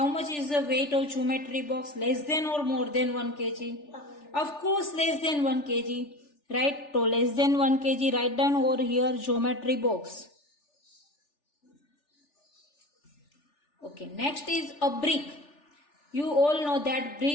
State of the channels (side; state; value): right; late; 3.4 ms